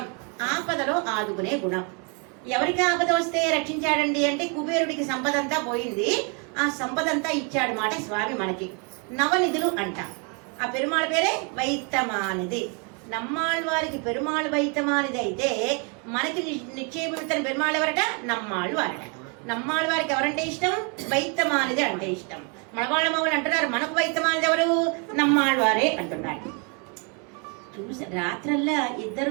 ఆపదలో ఆదుకునే గుణం. ఎవరికి ఆపద వస్తే రక్షించాడండి అంటే కుబేరుడికి సంపద అంతా పోయింది, ఆ సంపద అంతా ఇచ్చాడు మాట స్వామి మనకి. నవనిధులు అంట. ఆ పెరుమాళ్ పేరే వైత్తమానిది. నమ్మాళ్వారికి పెరుమాళ్ వైత్తమానిది అయితే మనకి నిక్షేపిస్తున్న పెరుమాళ్ ఎవరట? నమ్మాళ్వారట. నమ్మాళ్వారికి ఎవరంటే ఇష్టం? వైత్తమానిది అంటే ఇష్టం. మనవాళ్ళ మామూలు అంటున్నారు మనకు వైత్తమానిది ఎవరు? నమ్మాళ్వారే అంటున్నారు. చూసి రాత్రల్లా ఇద్దరు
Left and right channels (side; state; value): left; quieter; 35.3 dB